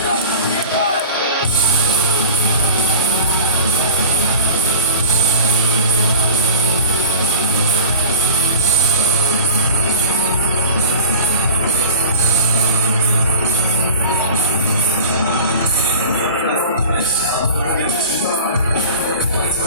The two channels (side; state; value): both; inverted; correlation -0.39